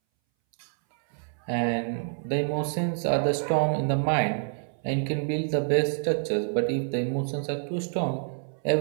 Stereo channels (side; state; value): left; silent; 60 dB below the other